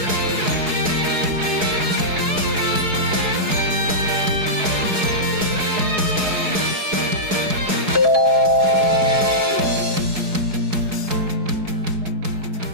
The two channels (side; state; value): left; late; 4.7 ms